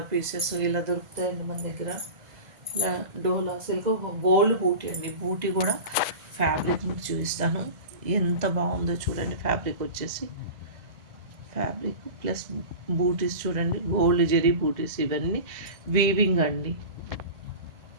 పీసెస్ ఇలా దొరుకుతాయండి మన దగ్గర. ఇలా డోలా సిల్క్ గోల్డ్ బూటీ అండి. బూటీ కూడా ఫ్యాబ్రిక్ మీకు చూపిస్తాను. ఎంత బాగుందో చూడండి. ఫ్యాబ్రిక్ వచ్చేసి ఫ్యాబ్రిక్ ప్లస్ బూటీస్ చూడండి. గోల్డ్ జెరీ బూటీస్ ఇవన్నీ వీవింగ్ అండి.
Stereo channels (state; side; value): late; left; 2.0 ms